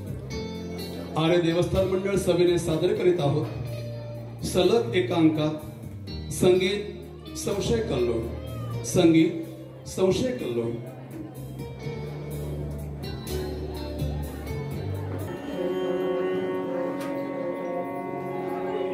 आर्य देवस्थान मंडळ सभेने सादर करीत आहोत सलग एकांकात संगीत संशय कल्लोळ संगीत संशय कल्लोळ।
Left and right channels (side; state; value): both; identical; correlation 1.00